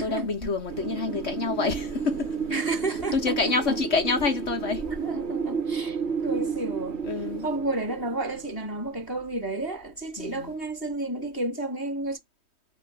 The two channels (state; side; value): late; right; 3.1 ms